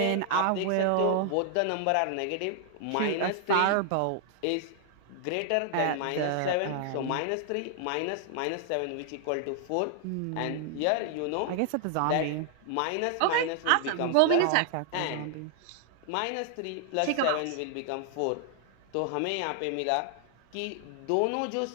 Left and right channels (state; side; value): different; both; correlation 0.00